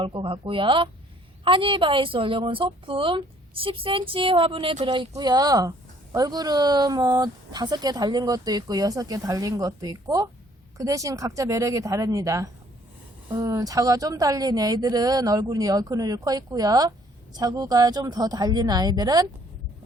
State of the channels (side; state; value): both; normal; correlation 0.61